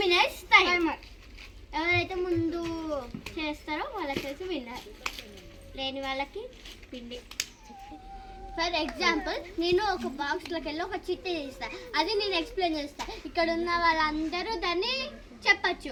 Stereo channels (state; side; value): identical; both; correlation 1.00